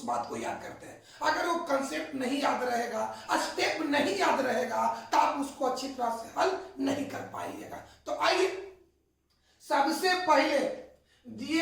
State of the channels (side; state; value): both; identical; correlation 1.00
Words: बात को याद करते हैं। अगर वो कंसेप्ट नहीं याद रहेगा, स्टेप नहीं याद रहेगा तो आप उसको अच्छी तरह से हल नहीं कर पाइएगा। तो आइए सबसे पहले